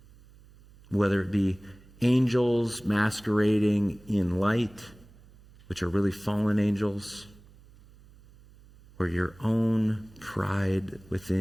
Whether it be angels masquerading in light, which are really fallen angels, or your own pride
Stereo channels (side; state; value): right; noise; hum, 25 dB below the sound